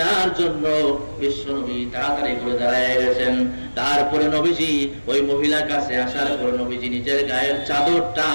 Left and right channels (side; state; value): both; inverted; correlation -1.00